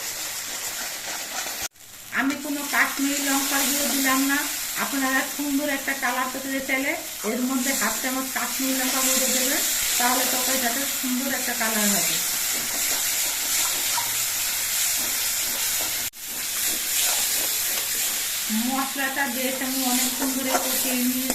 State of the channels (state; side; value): identical; both; correlation 1.00